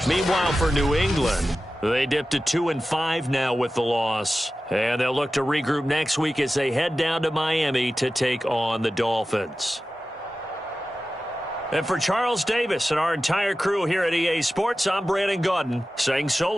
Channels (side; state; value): both; normal; correlation 0.94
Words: Meanwhile, for New England, they dipped to 2-5 now with the loss. And they'll look to regroup next week as they head down to Miami to take on the Dolphins. And for Charles Davis and our entire crew here at EA Sports, I'm Brandon Gaudin saying so